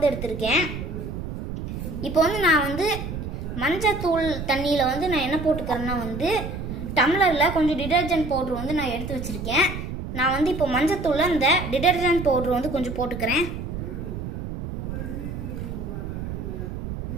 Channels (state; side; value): noise; right; rumble, 6 dB below the sound